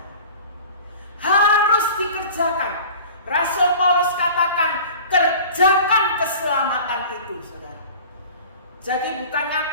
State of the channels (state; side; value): inverted; both; correlation -0.41